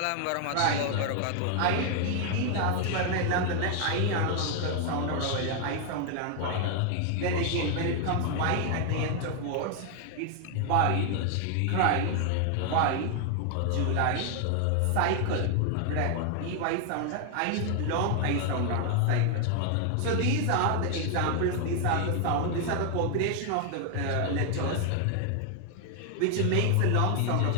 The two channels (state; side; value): different; both; correlation 0.00